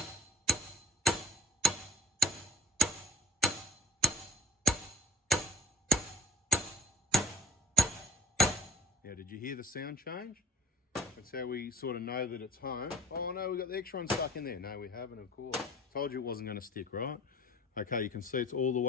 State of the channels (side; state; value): both; normal; correlation 0.55